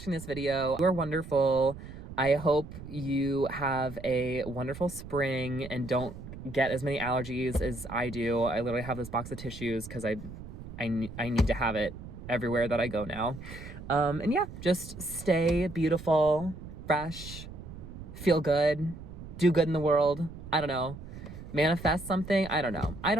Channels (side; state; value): right; noise; rumble, 13 dB below the sound